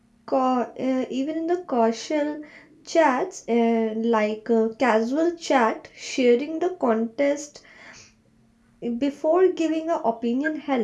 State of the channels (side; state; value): both; identical; correlation 1.00